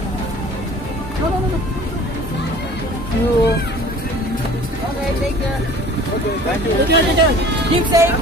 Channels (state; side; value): normal; both; correlation 0.47